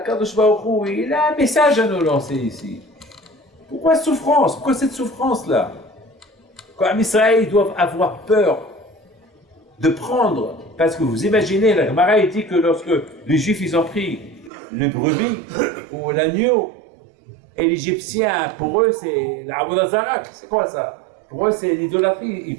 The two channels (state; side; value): drops out; left; at 14.5 s